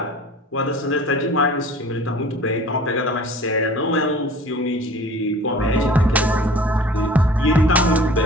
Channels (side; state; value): both; normal; correlation 0.45